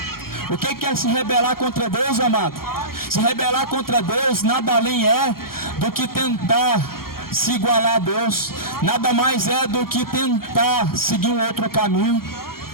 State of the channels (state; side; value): late; right; 0.93 ms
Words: O que é se rebelar contra Deus, amado? Se rebelar contra Deus nada além é do que tentar se igualar a Deus. Nada mais é do que tentar seguir um outro caminho.